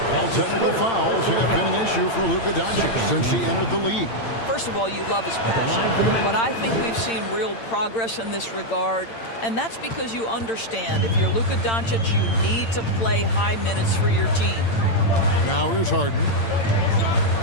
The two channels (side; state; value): right; late; 8.8 ms